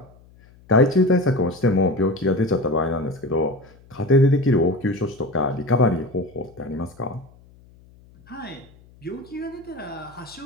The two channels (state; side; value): noise; left; hum, 26 dB below the sound